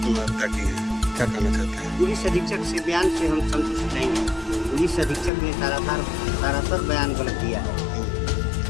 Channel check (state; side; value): drops out; right; at 5.3 s